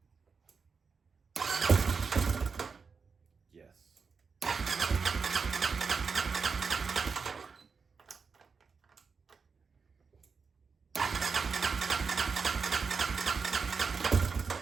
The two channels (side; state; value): left; quieter; 5.2 dB